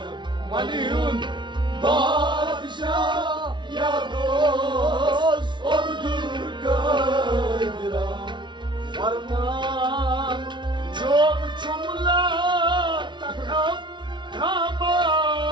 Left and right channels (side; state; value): left; late; 0.23 ms